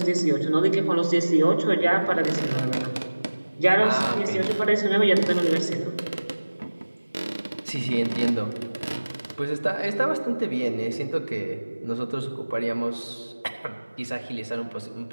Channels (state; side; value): inverted; both; correlation -1.00